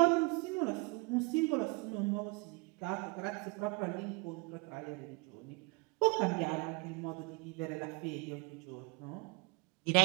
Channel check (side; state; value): left; quieter; 28.3 dB